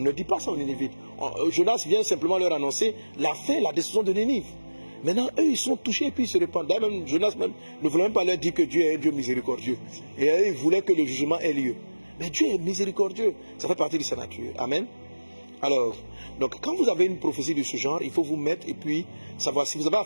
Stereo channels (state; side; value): inverted; both; correlation -1.00